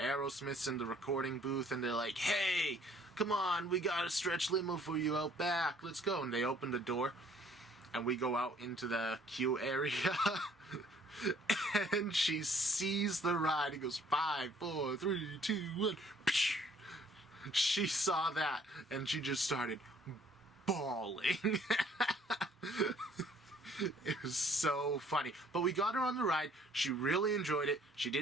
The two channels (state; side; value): normal; both; correlation 0.60